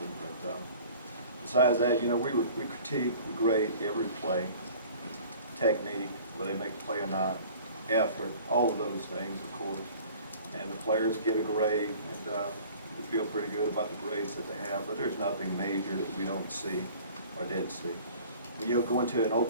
but besides that, you know, we critique, we grade every play, technique, whether they make the play or not, effort, all of those things, of course. And the players get a grade, and we feel pretty good about the grades that they have, but there's nothing major that we don't see or didn't see. When you go into an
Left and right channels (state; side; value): inverted; both; correlation -0.47